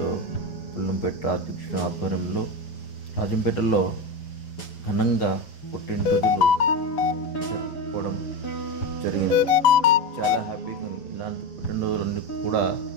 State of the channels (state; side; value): late; right; 7.1 ms